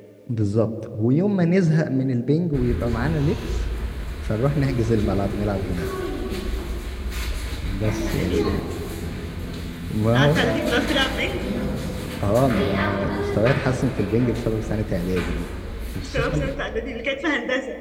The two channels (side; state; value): both; identical; correlation 1.00